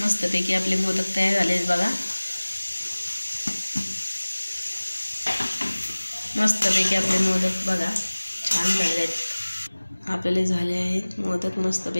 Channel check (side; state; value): both; inverted; correlation -1.00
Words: मस्तपैकी आपले मोदक तयार झाले आहेत बघा. मस्तपैकी आपले मोदक बघा छान झाले आहेत. आपले झाले आहेत मोदक